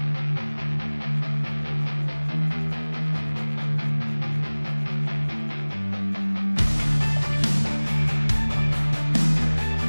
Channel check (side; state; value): both; inverted; correlation -1.00